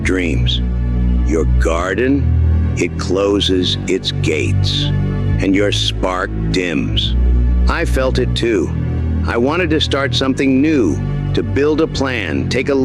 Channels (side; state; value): both; identical; correlation 1.00